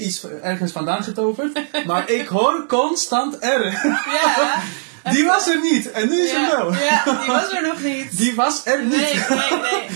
ergens vandaan getoverd. Maar ik hoor constant R. Ja. Die was er niet. En nu is er wel. Ja, die was er nog niet. Die was er niet.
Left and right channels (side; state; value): left; silent; digital silence